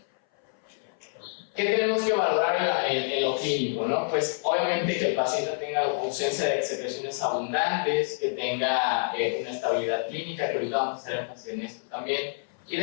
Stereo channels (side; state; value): right; silent; 57 dB below the other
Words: ¿Qué tenemos que valorar en lo clínico, no? Pues obviamente que el paciente tenga ausencia de secreciones abundantes, que tenga una estabilidad clínica, que ahorita vamos a hacer énfasis en esto también, y